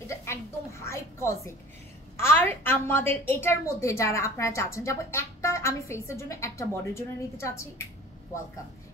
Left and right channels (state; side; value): normal; both; correlation 0.44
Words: এটা একদম হাইপোক্সিক। আর আমাদের এটার মধ্যে যারা আপনারা চাচ্ছেন যাবো একটা আমি ফেসের জন্য একটা বডির জন্য নিতে চাচ্ছি, ওয়েলকাম।